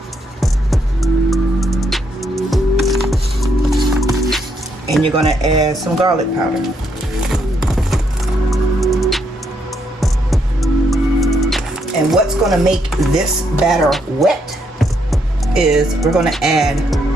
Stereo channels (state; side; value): normal; both; correlation 0.75